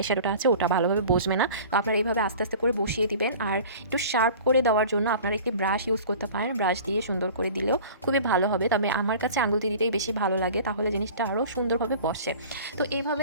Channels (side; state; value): both; inverted; correlation -0.42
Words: শ্যাডোটা আছে ওটা ভালোভাবে বসবে না। তো আপনারা এইভাবে আস্তে আস্তে করে বসিয়ে দিবেন। আর একটু শার্প করে দেওয়ার জন্য আপনারা একটি ব্রাশ ইউজ করতে পারেন, ব্রাশ দিয়ে সুন্দর করে দিলেও খুবই ভালো হবে। তবে আমার কাছে আঙুল দিয়ে দিতেই বেশি ভালো লাগে, তাহলে জিনিসটা আরও সুন্দরভাবে বসে। তো এইভাবে